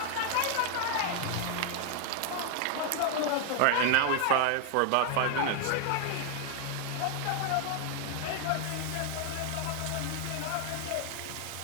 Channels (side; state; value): both; different; correlation 0.00